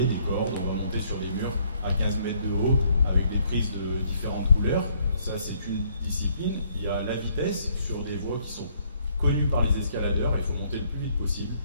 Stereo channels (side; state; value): both; inverted; correlation -0.66